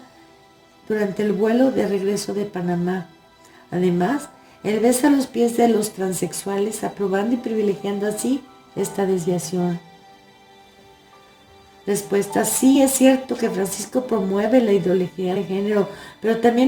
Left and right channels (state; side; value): identical; both; correlation 1.00